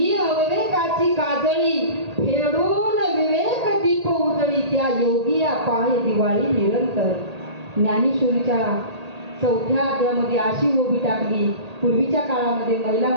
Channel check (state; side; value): late; left; 1.8 ms